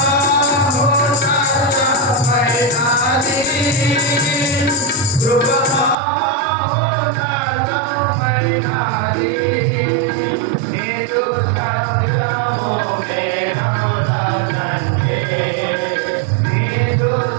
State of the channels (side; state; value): left; drops out; at 6.0 s